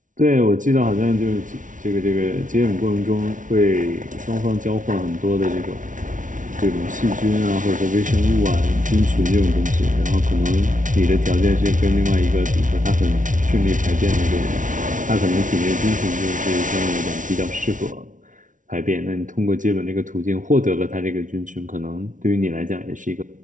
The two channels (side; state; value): left; late; 0.38 ms